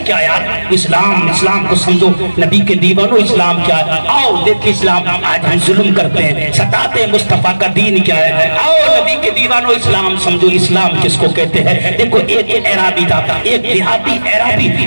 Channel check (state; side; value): inverted; both; correlation -1.00